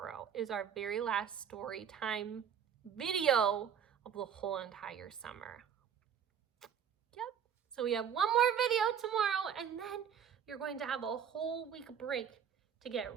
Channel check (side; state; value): left; quieter; 8.2 dB